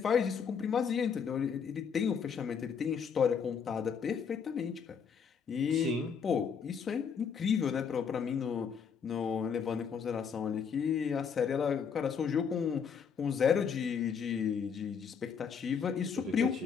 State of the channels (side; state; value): right; quieter; 6.6 dB